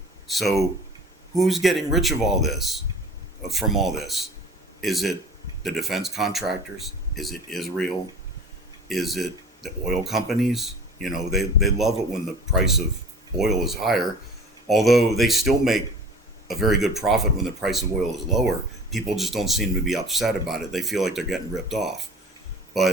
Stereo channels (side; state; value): both; normal; correlation 0.42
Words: So who's getting rich of all this, from all this? Is it the defense contractors? Is it Israel? Is it the oil companies? They love it when the price of oil is higher, although they still make a very good profit when the price of oil is lower. People just don't seem to be upset about it. They feel like they're getting ripped off.